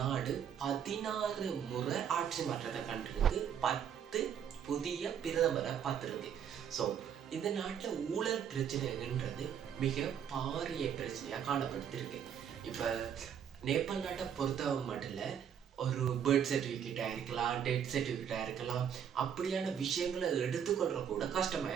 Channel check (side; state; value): left; quieter; 8.5 dB